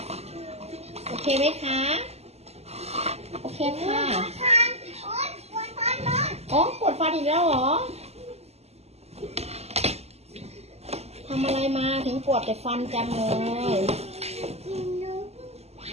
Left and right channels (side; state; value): left; late; 0.30 ms